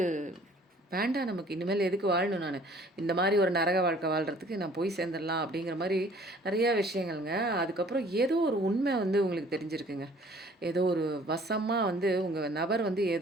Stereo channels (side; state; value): both; normal; correlation 0.54